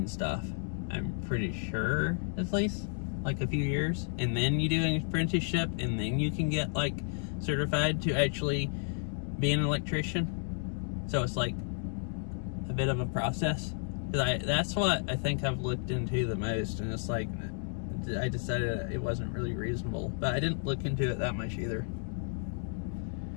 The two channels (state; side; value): silent; right; 56 dB below the other